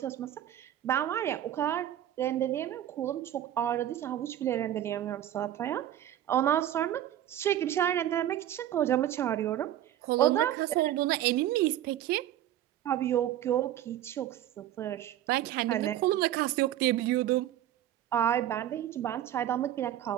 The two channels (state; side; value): quieter; left; 12.1 dB